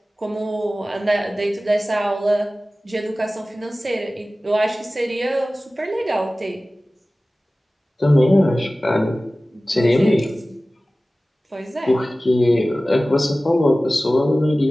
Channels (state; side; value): normal; both; correlation 0.97